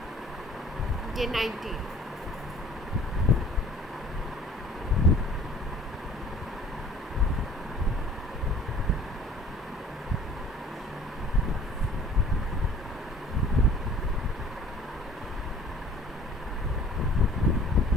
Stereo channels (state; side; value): normal; both; correlation 0.50